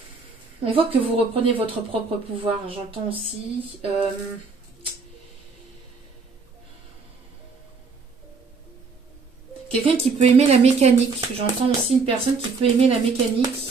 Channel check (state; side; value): quieter; left; 4.6 dB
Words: on voit que vous reprenez votre propre pouvoir, j'entends aussi... quelqu'un qui peut aimer la mécanique. J'entends aussi une personne qui peut aimer la mécanique.